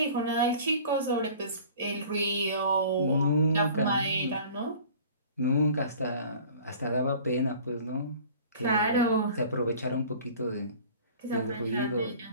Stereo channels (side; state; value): both; inverted; correlation -0.46